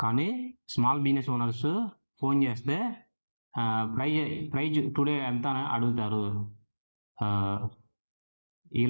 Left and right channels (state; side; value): inverted; both; correlation -1.00